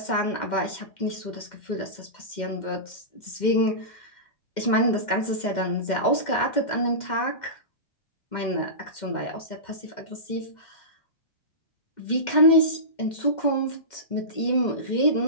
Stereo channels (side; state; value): right; late; 2.1 ms